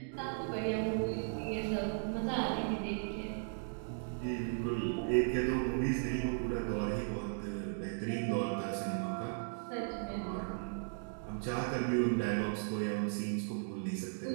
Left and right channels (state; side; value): silent; left; digital silence